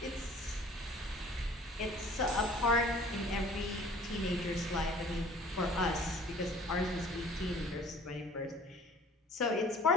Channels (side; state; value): both; normal; correlation 0.50